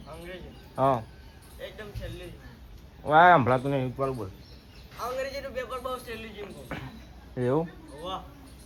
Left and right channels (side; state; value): both; identical; correlation 1.00